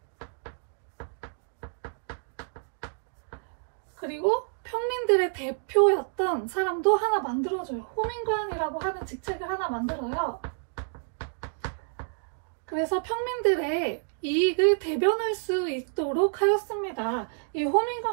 그리고 평민들의 대표였던 사람도 하나 만들어줘요. 호민관이라고 하는 직책을 하나 만들어요. 그래서 평민들의 이익을 대변할 수 있도록 하였습니다. 이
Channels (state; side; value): silent; left; digital silence